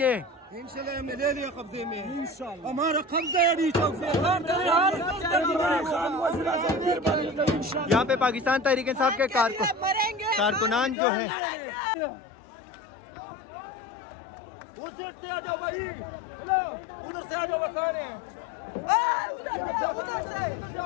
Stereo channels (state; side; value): drops out; right; at 11.0 s